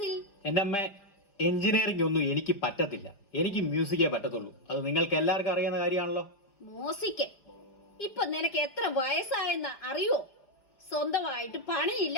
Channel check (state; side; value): late; right; 5.0 ms